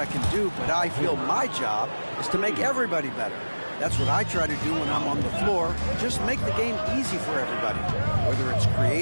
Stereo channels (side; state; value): both; inverted; correlation -1.00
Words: can do, but I feel my job is to make everybody better. That's what I try to do when I'm on the floor. Just make the game easy for everybody, whether it's